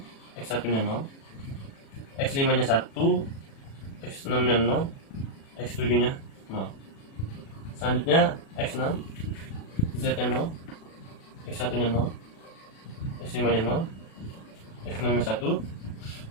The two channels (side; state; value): right; late; 36 ms